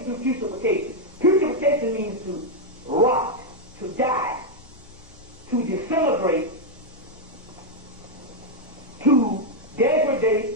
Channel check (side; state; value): both; normal; correlation 0.00